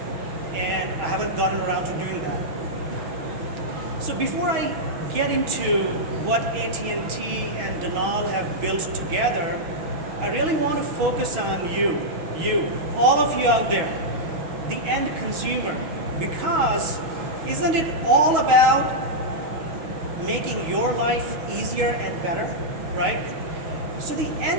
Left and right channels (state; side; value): late; left; 6.3 ms